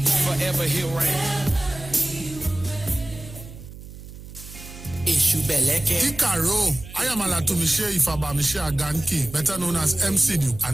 Forever he'll reign. Ikaro, I am Alatumishe Ifaba Mishe Aganki, better known as MCD,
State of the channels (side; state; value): right; noise; hum, 15 dB below the sound